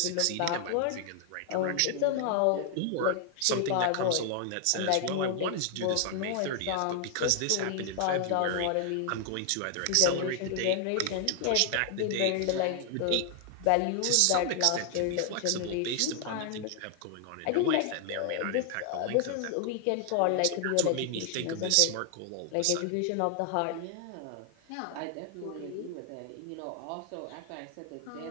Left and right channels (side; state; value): both; different; correlation 0.00